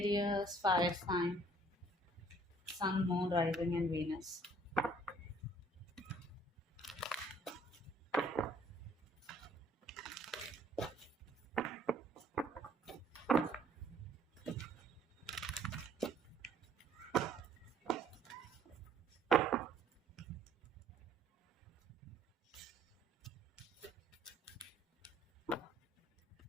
fire sign, Sun, Moon, Rising, and Venus.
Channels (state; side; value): normal; both; correlation 0.59